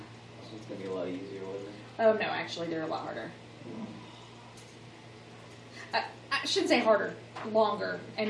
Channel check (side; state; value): both; identical; correlation 1.00